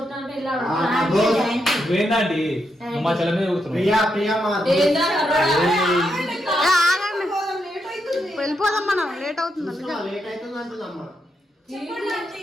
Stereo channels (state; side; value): normal; both; correlation 0.82